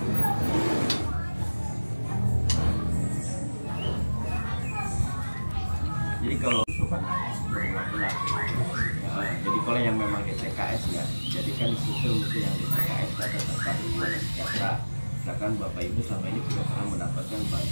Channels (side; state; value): both; inverted; correlation -1.00